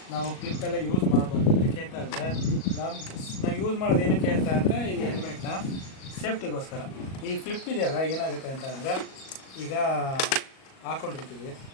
ನಾವು ಕ್ಲಿಪ್ಪೆಲ್ಲ ಯೂಸ್ ಮಾಡ್ಬೋದು. ಏನಕ್ಕೆ ಅಂತ ಅಂದರೆ ನಾವು ಯೂಸ್ ಮಾಡೋದು ಏನಕ್ಕೆ ಅಂತ ಅಂದರೆ ಈ ಹೆಲ್ಮೆಟ್ನ ಸೇಫ್ಟಿಗೋಸ್ಕರ. ಈ ಫ್ಲಿಪ್ ಇದೆಯಲ್ಲ, ಏನಾಗುತ್ತೆ ಅಂತ ಅಂದರೆ ಈಗ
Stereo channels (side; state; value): right; late; 37 ms